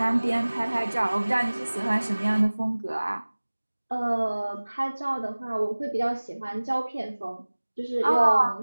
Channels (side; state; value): both; inverted; correlation -1.00